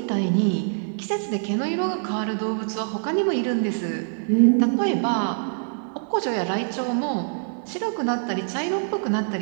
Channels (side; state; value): left; silent; 59 dB below the other